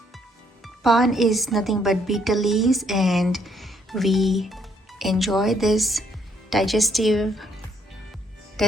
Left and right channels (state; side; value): normal; both; correlation 0.69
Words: Paan is nothing but betel leaves and we enjoy this digestive